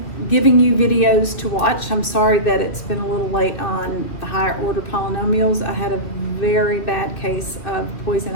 giving you videos to watch. I'm sorry that it's been a little late on the higher order polynomials. I had a very bad case of poison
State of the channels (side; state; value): right; late; 2.6 ms